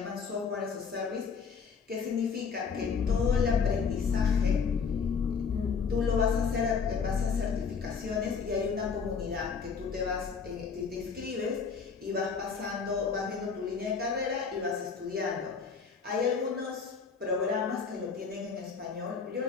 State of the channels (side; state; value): right; quieter; 5.7 dB